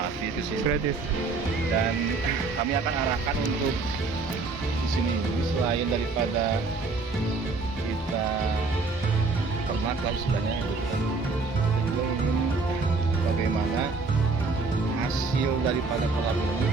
di sini. Gratis. Dan kami akan arahkan untuk di sini selain daripada kita ternak lah istilahnya, kita juga ingin bagaimana hasil daripada kolam ini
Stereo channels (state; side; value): quieter; left; 4.0 dB